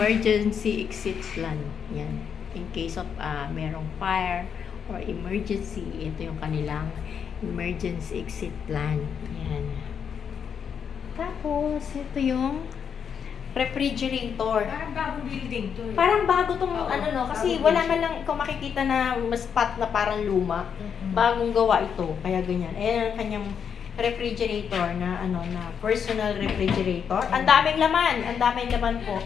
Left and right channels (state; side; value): quieter; right; 7.3 dB